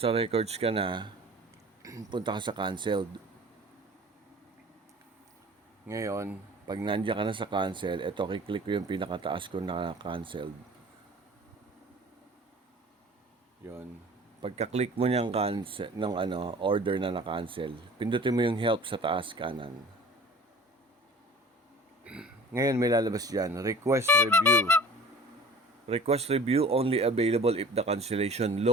records ka na, punta ka sa canceled. Ngayon, pag nandiyan ka na sa cancel, eto, kiklik ko yung pinakataas ko na canceled. Yun. Pagka-click mo niyang cancel ng order na na-cancel, pindutin mo yung help sa taas kanan. Ngayon may lalabas diyan, request review. Request review only available if the cancellation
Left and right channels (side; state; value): both; normal; correlation 0.45